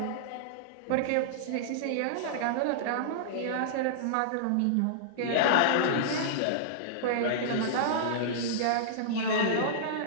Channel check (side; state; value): both; different; correlation -0.02